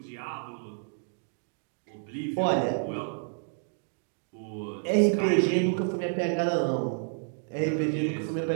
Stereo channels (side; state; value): left; silent; 58 dB below the other